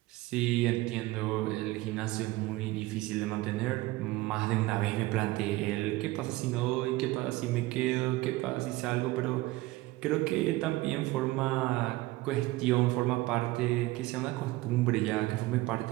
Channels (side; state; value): left; quieter; 19.3 dB